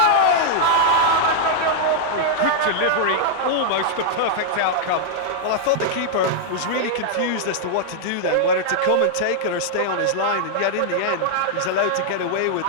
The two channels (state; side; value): different; both; correlation -0.01